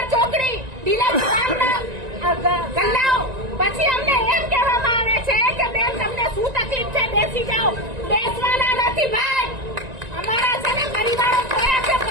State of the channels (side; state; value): left; late; 1.9 ms